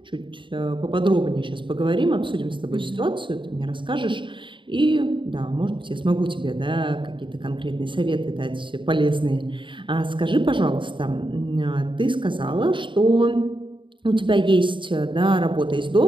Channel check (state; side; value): late; left; 0.24 ms